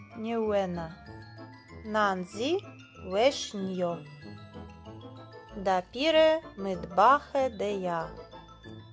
ньюена. Нанзі вешньо. Да піре мидбахе дея.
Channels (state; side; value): identical; both; correlation 1.00